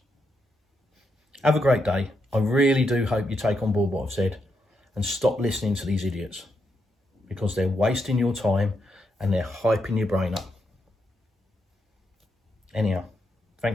Have a great day. I really do hope you take on board what I've said and stop listening to these idiots, because they're wasting your time and they're hyping your brain up. Anyhow,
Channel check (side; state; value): both; normal; correlation 0.82